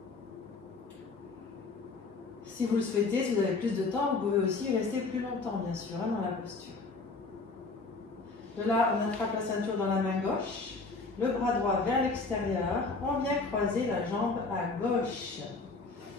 Si vous le souhaitez, si vous avez plus de temps, vous pouvez aussi rester plus longtemps, bien sûr, hein, dans la posture. De là, on attrape la ceinture dans la main gauche, le bras droit vers l'extérieur, on vient croiser la jambe à gauche.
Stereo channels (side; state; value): right; quieter; 3.8 dB